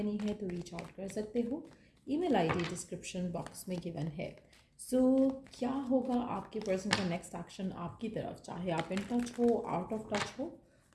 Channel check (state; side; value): identical; both; correlation 1.00